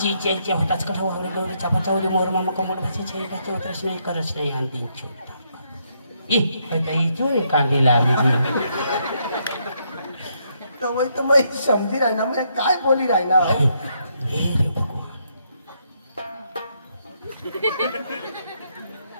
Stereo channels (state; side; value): inverted; both; correlation -0.75